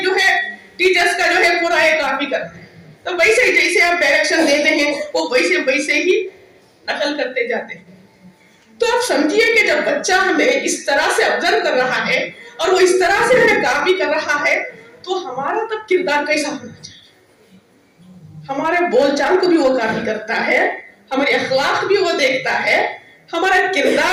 जो है टीचर्स का जो है पूरा ये कॉपी करते हैं। तो वैसे ही जैसे आप डायरेक्शन देते हैं वो वैसे ही नकल करते जाते हैं। तो आप समझिए कि जब बच्चा हमें इस तरह से ऑब्जर्व कर रहा है और वो इस तरह से हमें कॉपी कर रहा है, तो हमारा तब किरदार कैसा होना चाहिए। हमारे बोलचाल को भी वो कॉपी करता है, हमारे अखलाक भी वो देखता है, हमारा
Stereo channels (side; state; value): both; identical; correlation 1.00